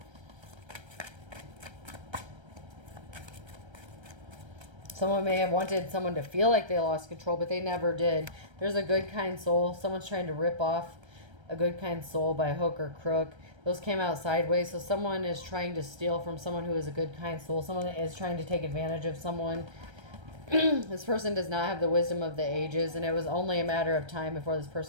Someone may have wanted someone to feel like they lost control, but they never did. There's a good, kind soul. Someone's trying to rip off a good, kind soul by hook or crook. Those came out sideways. So someone is trying to steal from someone who is a good, kind soul. Someone is trying to take advantage of someone. This person does not have the wisdom of the ages, and it was only a matter of time before this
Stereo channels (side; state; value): left; late; 1.3 ms